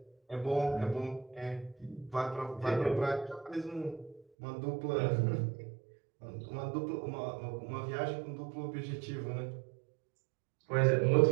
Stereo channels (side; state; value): left; drops out; at 4.2 s